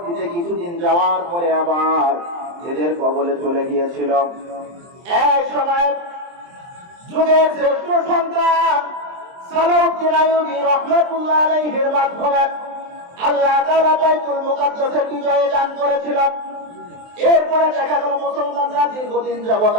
কিছুদিন যাওয়ার পরে আবার এদের কবলে চলে গিয়েছিল। এক সময় যুগের শ্রেষ্ঠ সন্তান সালাউদ্দিন আইয়ুবী রাহমাতুল্লাহ আলাইহির মাধ্যমে আল্লাহ তাআলা বাইতুল মুকাদ্দাসের বিজয় দান করেছিলেন। এরপরে দেখা গেল মুসলমানরা দীর্ঘদিন যাবৎ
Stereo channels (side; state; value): left; late; 23 ms